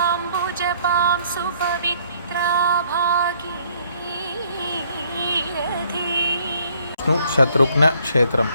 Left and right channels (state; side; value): inverted; both; correlation -0.63